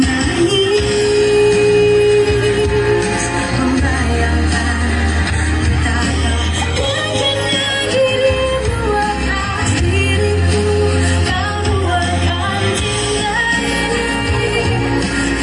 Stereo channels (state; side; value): identical; both; correlation 1.00